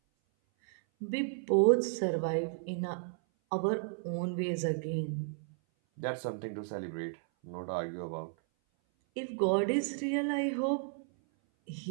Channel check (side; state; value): left; silent; 55 dB below the other